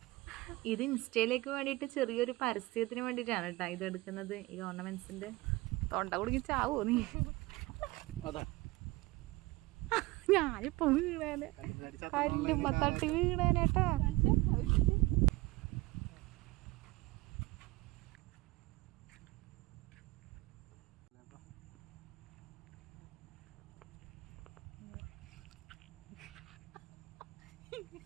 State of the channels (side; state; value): left; quieter; 20.9 dB